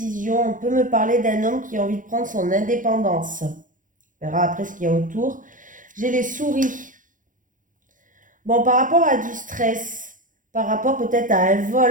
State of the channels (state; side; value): late; left; 0.38 ms